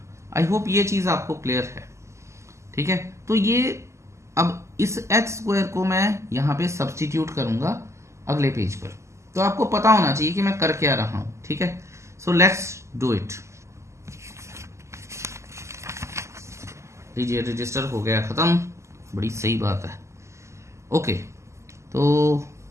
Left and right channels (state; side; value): late; left; 0.13 ms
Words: आई होप ये चीज़ आपको क्लियर है। ठीक है, तो ये अब इस एच स्क्वायर को मैं यहाँ पे सब्सटीट्यूट करूँगा अगले पेज पर, तो आपको पता होना चाहिए कि मैं कर क्या रहा हूँ। ठीक है, सो लेट्स डू इट। लीजिए, रजिस्टर हो गया ख़त्म, बड़ी सही बात है। ओके, तो